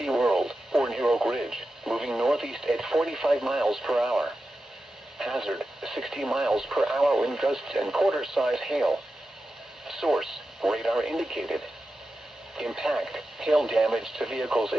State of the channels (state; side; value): normal; both; correlation 0.91